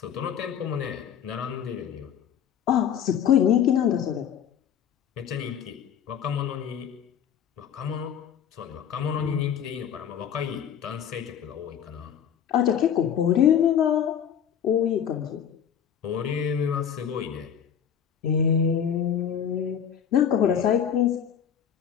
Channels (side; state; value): right; quieter; 8.7 dB